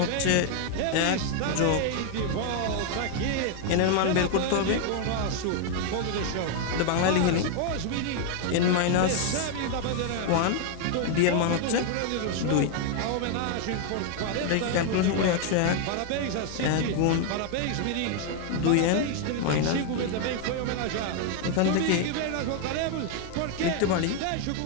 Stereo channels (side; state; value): both; different; correlation 0.00